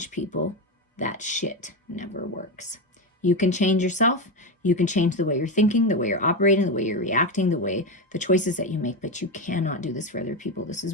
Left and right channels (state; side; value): normal; both; correlation 0.14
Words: people. That shit never works. You can change yourself. You can change the way you're thinking, the way you're operating, the way you're reacting, the choices that you make, but you cannot do this for other people. This is